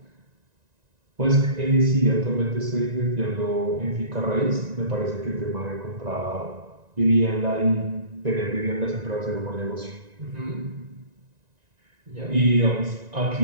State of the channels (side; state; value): left; late; 1.9 ms